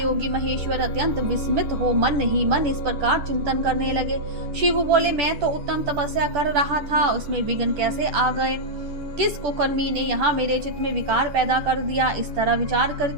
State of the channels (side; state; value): left; late; 10 ms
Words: महेश्वर अत्यंत विस्मित हो मन ही मन इस प्रकार चिंतन करने लगे। शिव बोले, मैं तो उत्तम तपस्या कर रहा था, उसमें विघ्न कैसे आ गए? किस कुकर्मी ने यहाँ मेरे चित्त में विकार पैदा कर दिया? इस तरह विचार